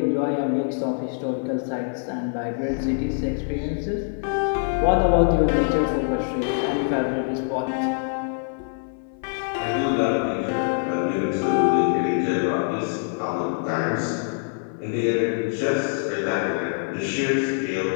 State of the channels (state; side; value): silent; right; 62 dB below the other